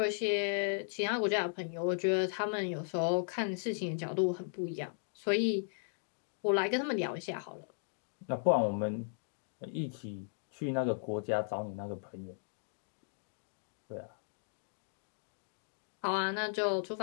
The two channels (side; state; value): right; silent; digital silence